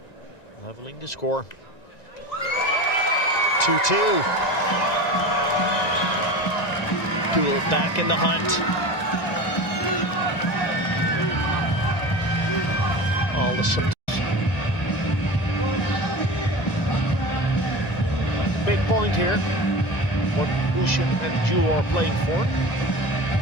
leveling the score. 2-2. Deuel back in the hunt. All the big point here, what Ouschan and Deuel are playing for.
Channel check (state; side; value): late; right; 1.9 ms